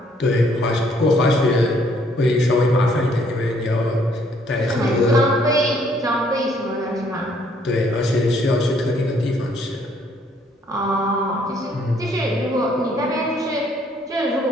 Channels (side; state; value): both; normal; correlation 0.65